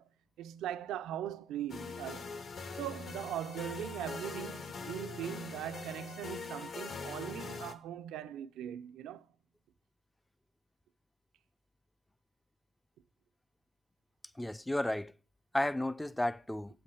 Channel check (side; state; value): both; normal; correlation 0.76